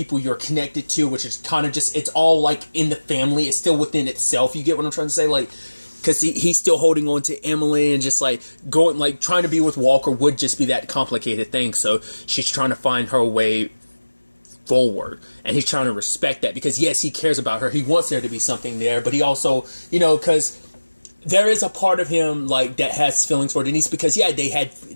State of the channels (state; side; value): inverted; both; correlation -1.00